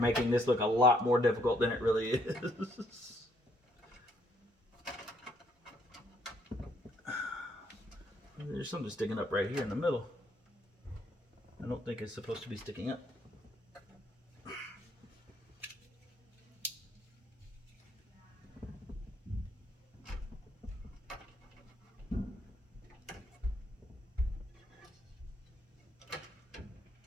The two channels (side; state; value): both; normal; correlation 0.69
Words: this look a lot more difficult than it really is. There's something sticking up right here in the middle. I don't think it's supposed to be sticking up.